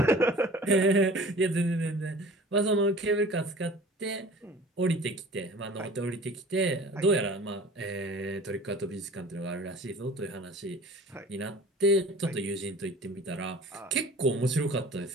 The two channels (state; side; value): normal; both; correlation 0.45